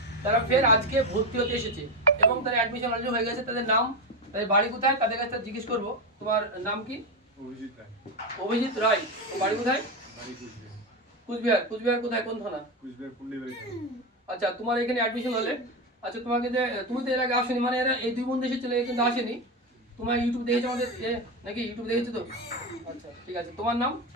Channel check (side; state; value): both; normal; correlation 0.14